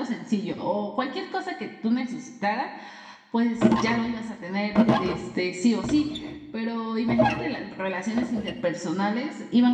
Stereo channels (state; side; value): identical; both; correlation 1.00